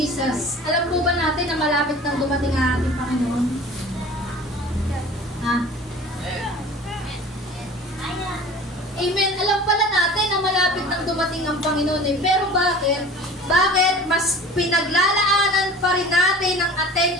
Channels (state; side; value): normal; both; correlation 0.42